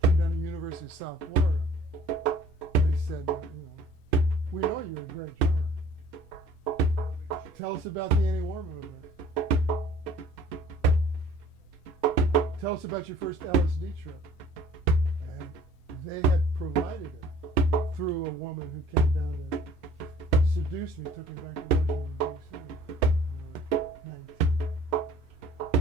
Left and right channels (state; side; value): normal; both; correlation 0.53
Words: Came down to the University of South Florida. They said, we know you're a great drummer. Tell us about the anti-war movement. Tell us about your first LSD trip. And they had provided it through a woman who came down to seduce me, took me back to Washington, D.C. when I was